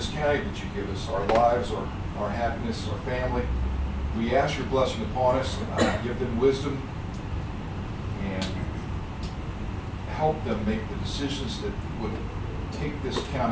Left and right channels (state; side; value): identical; both; correlation 1.00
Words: county that you give us, our lives, our happiness, our family. We ask your blessing upon us, give them wisdom, and help them make the decisions that would take this